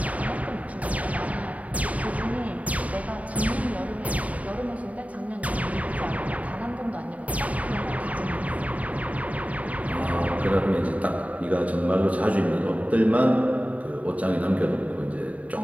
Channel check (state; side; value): late; left; 0.069 ms